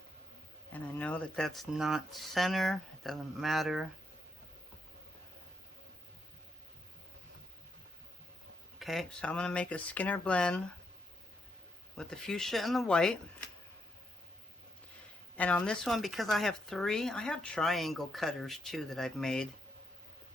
And I know that that's not center, it doesn't matter. Okay, so I'm going to make a Skinner blend with the fuchsia and the white. And on this one, because I have three, I have triangle cutters too that I've made,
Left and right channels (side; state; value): both; normal; correlation 0.79